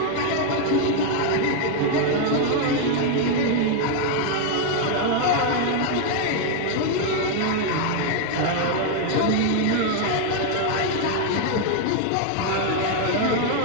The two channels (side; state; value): both; different; correlation 0.00